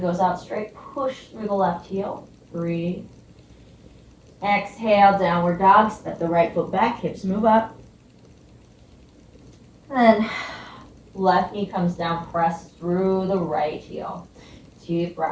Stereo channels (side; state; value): both; identical; correlation 1.00